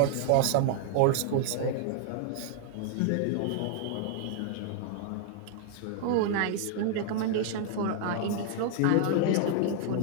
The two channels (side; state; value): both; different; correlation 0.00